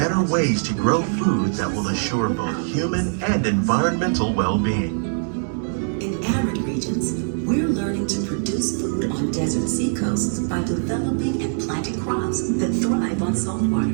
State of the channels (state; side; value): silent; left; 64 dB below the other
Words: ways to grow food that will assure both human and environmental well-being. In arid regions, we're learning to produce food on desert seacoasts by developing and planting crops that thrive on salt water.